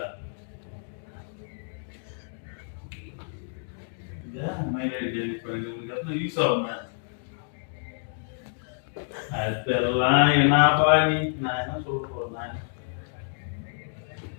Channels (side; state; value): right; silent; digital silence